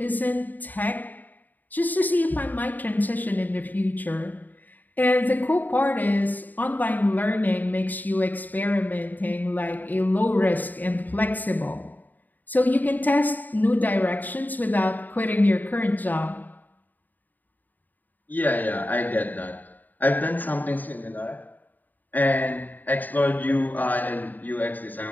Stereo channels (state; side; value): late; right; 0.085 ms